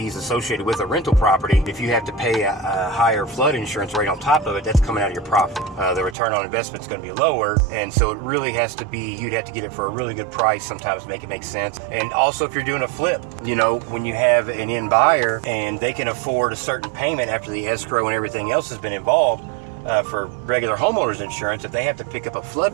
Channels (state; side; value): drops out; left; at 6.2 s